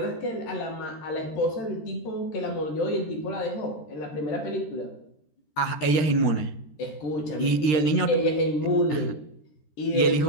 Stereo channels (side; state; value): right; late; 13 ms